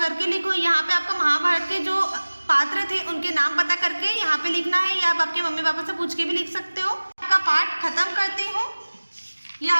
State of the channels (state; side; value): inverted; both; correlation -1.00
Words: लिखो। यहाँ पे आपको महाभारत के जो पात्र थे उनके नाम पता करके यहाँ पे लिखना है, या आप आपके मम्मी पापा से पूछ के भी लिख सकते हो। आपका पाठ खत्म करती हूँ। ये